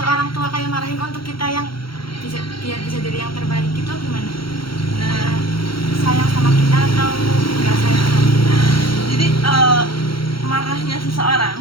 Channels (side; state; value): right; late; 0.74 ms